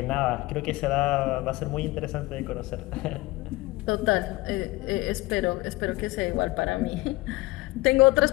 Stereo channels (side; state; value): right; quieter; 21.0 dB